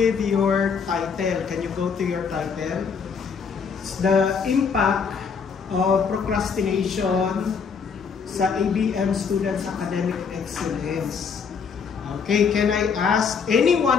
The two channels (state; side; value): quieter; right; 6.0 dB